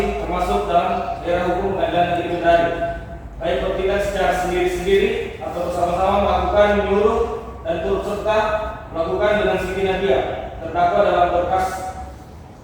termasuk dalam daerah hukum Pengadilan Negeri Kendari, baik bertindak secara sendiri-sendiri atau bersama-sama melakukan, menyuruh, dan turut serta melakukan dengan Siti Nadia terdakwa dalam berkas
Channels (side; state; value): both; identical; correlation 1.00